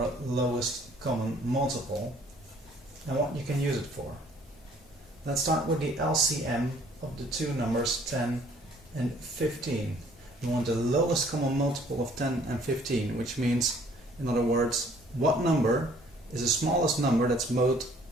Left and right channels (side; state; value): both; normal; correlation 0.58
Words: lowest common multiple, and what you can use it for. Let's start with the LCM of the two numbers 10 and 15. You want the lowest common multiple of 10 and 15, which means, in other words, what number is the smallest number that's both